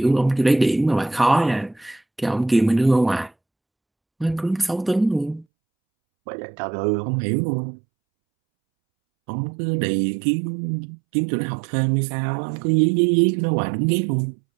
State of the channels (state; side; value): drops out; left; at 5.5 s